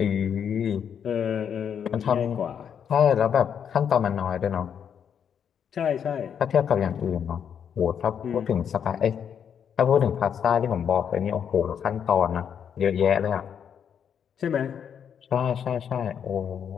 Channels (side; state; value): right; quieter; 8.0 dB